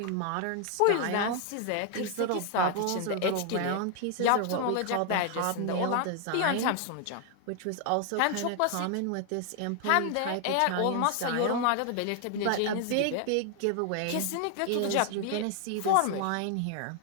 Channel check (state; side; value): different; both; correlation 0.00